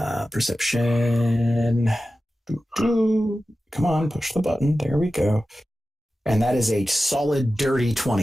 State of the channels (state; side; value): normal; both; correlation 0.94